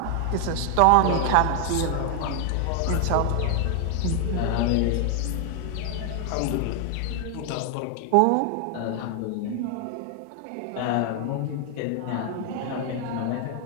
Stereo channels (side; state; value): both; different; correlation 0.00